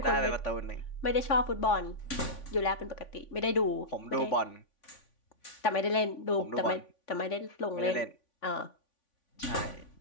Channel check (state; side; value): late; right; 3.5 ms